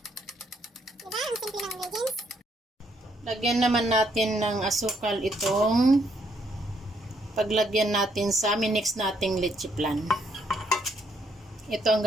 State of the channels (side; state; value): both; normal; correlation 0.72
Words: Diba? Ang simple ng ingredients. Lagyan naman natin ng asukal itong paglagyan natin sa minix nating leche flan. Ito ang